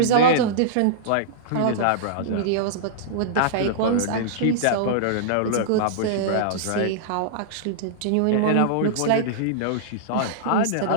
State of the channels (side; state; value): both; different; correlation -0.02